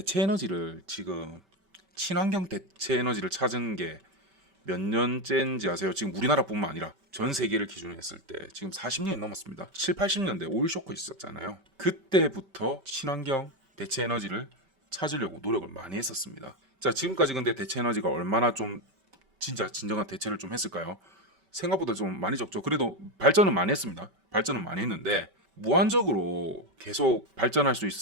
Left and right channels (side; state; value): left; late; 5.2 ms